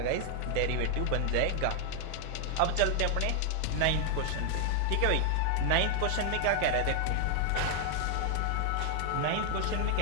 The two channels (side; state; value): both; different; correlation 0.00